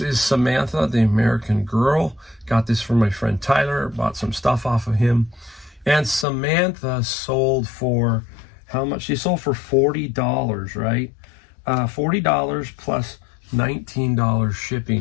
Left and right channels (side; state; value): right; drops out; at 6.2 s